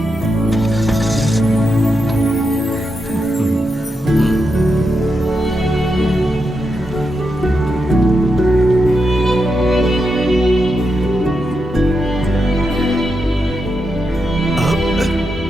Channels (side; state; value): both; normal; correlation 0.85